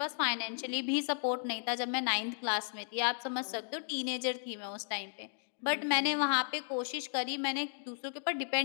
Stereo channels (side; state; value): right; silent; digital silence